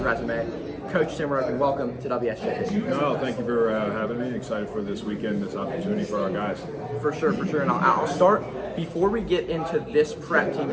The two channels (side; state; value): both; identical; correlation 1.00